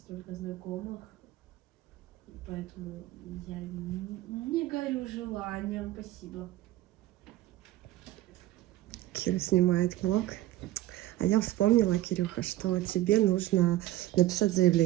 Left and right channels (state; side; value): quieter; left; 15.3 dB